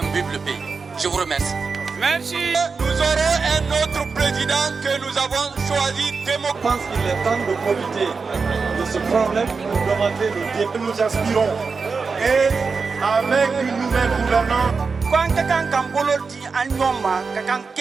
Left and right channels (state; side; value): quieter; left; 4.8 dB